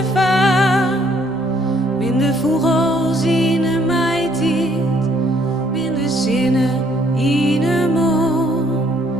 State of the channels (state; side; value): normal; both; correlation 0.65